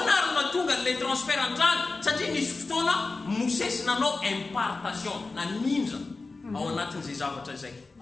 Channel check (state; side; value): quieter; right; 3.7 dB